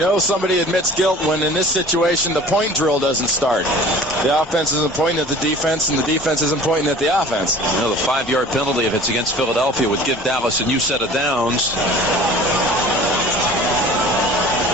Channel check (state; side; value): normal; both; correlation 0.44